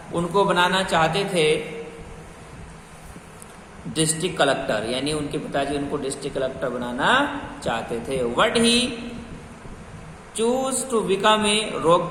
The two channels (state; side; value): identical; both; correlation 1.00